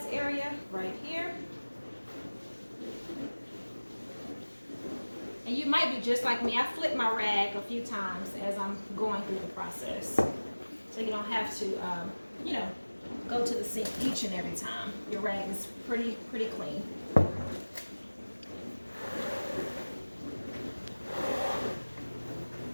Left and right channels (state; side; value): inverted; both; correlation -1.00